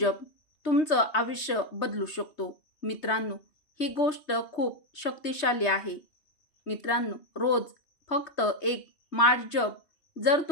तुमचं आयुष्य बदलू शकतो. मित्रांनो, ही गोष्ट खूप शक्तिशाली आहे. मित्रांनो, रोज फक्त एक माळ जप. जर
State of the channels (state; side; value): late; right; 3.2 ms